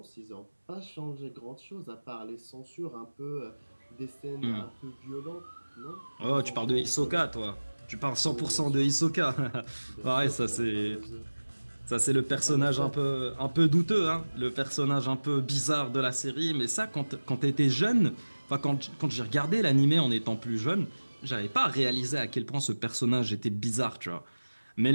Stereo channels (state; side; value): inverted; both; correlation -1.00